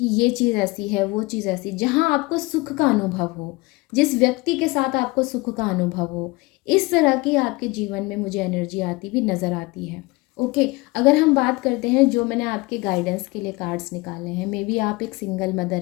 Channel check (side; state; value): right; quieter; 23.3 dB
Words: ये चीज़ ऐसी है, वो चीज़ ऐसी, जहाँ आपको सुख का अनुभव हो, जिस व्यक्ति के साथ आपको सुख का अनुभव हो, इस तरह की आपके जीवन में मुझे एनर्जी आती भी नज़र आती है, ओके। अगर हम बात करते हैं जो मैंने आपके गाइडेंस के लिए कार्ड्स निकाले हैं, मे बी आप एक सिंगल